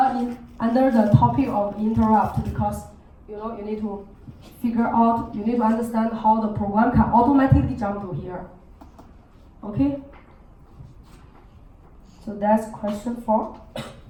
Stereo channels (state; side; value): identical; both; correlation 1.00